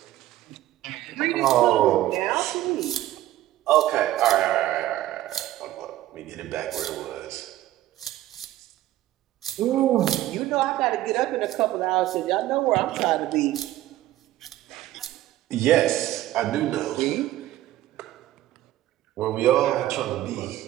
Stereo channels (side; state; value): left; quieter; 14.5 dB